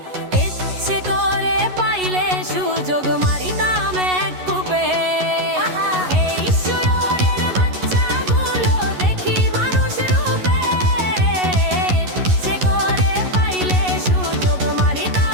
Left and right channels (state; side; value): late; left; 11 ms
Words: ইচ্ছে করে পাইলে সুযোগ মারিতাম এক কূপে। এই শুয়োরের বাচ্চাগুলো দেখি মানুষ রূপে, ইচ্ছে করে পাইলে সুযোগ